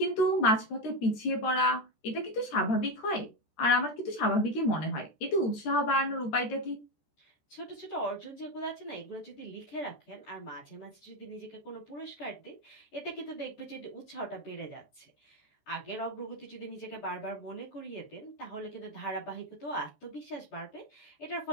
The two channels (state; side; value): late; right; 14 ms